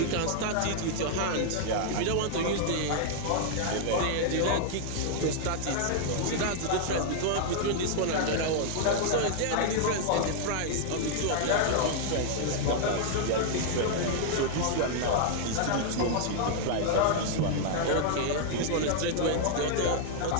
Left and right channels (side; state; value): both; different; correlation -0.01